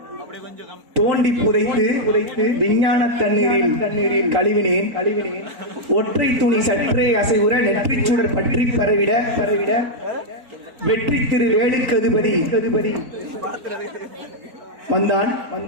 தோண்டி புதைத்து விஞ்ஞான தண்ணீரில் கழுவினேன். ஒற்றை துணி சற்றே அசைவுற நெற்றிச் சுடர் பற்றி பரவிட வெற்றி திரு வேலுக்கதிபதி வந்தான்.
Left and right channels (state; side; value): late; left; 4.5 ms